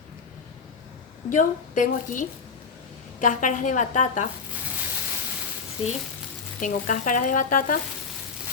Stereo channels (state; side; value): quieter; right; 5.3 dB